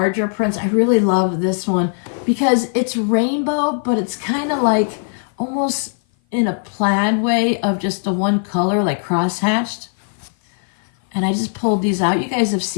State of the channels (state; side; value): silent; right; 56 dB below the other